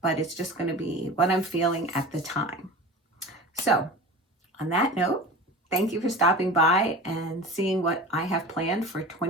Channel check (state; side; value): normal; both; correlation 0.35